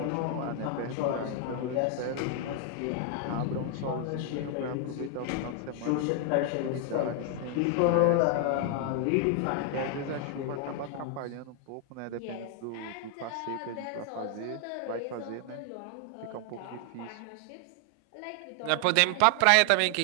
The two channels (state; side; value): different; both; correlation 0.00